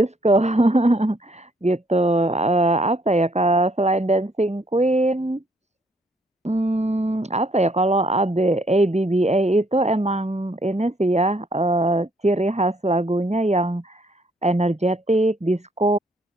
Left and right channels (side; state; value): both; normal; correlation 0.67